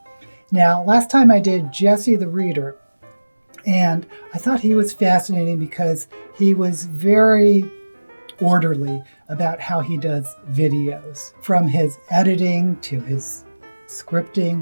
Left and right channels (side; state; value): both; inverted; correlation -1.00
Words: Now, last time I did Jesse the Reader, and I thought he was fascinating because he was very orderly about how he does videos, from his editing to his scripting